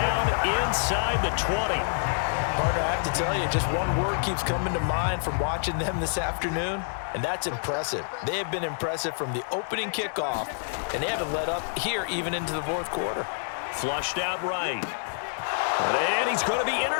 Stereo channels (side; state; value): right; silent; digital silence